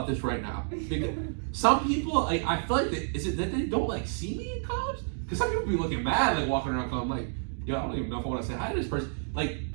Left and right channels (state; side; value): silent; left; digital silence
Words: this right now. Because some people, like, I feel like, is it that they don't, like, see me in college? Because some people be looking mad, like, walking around college. I'm like, yo, I don't even know if I want to say hi to this person. Like,